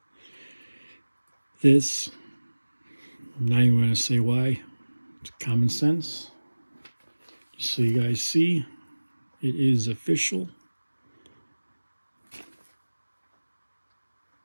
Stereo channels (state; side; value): inverted; both; correlation -1.00